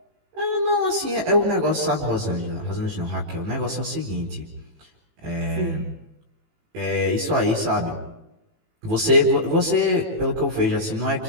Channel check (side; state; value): left; late; 18 ms